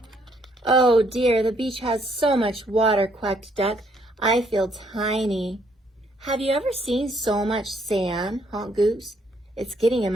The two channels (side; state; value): both; normal; correlation 0.68